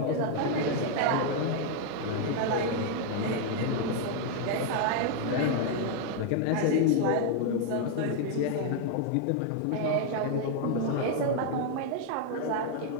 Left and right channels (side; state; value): both; different; correlation 0.01